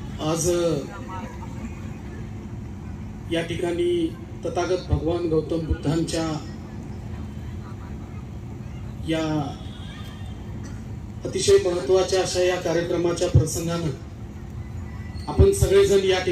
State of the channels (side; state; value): both; identical; correlation 1.00